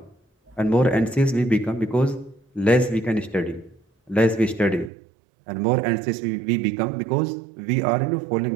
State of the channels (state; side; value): drops out; left; at 4.9 s